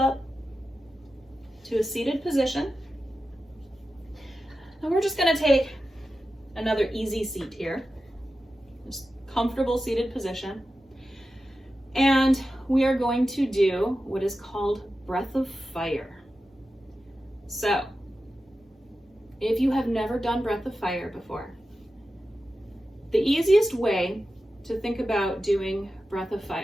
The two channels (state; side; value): normal; both; correlation 0.92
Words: to a seated position. And we're just going to take another easy seat here. Just comfortable seated position. And we are going to do what is called breath of fire. So, if you have never done breath of fire before, the easiest way to think about doing breath of